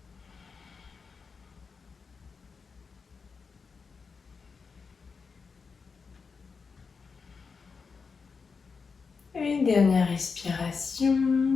Une dernière respiration.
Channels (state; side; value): quieter; right; 5.2 dB